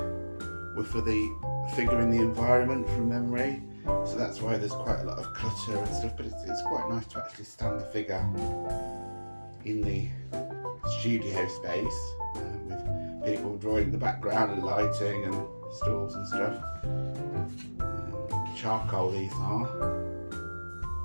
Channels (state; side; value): inverted; both; correlation -1.00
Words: were for the figure in the environment from memory. So that's why there's quite a lot of clutter and stuff, but it's quite nice to actually stand the figure in the studio space with people drawing in the background and lighting and stools and stuff. Charcoal these are.